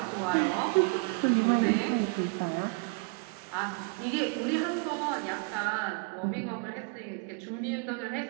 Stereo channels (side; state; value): left; quieter; 32.7 dB